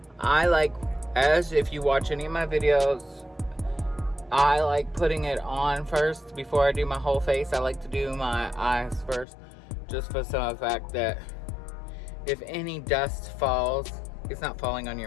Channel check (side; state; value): right; drops out; at 9.2 s